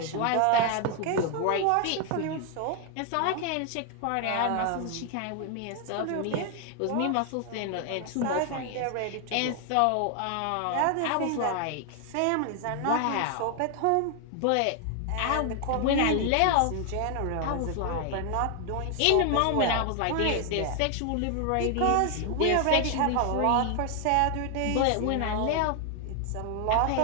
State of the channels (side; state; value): both; different; correlation 0.00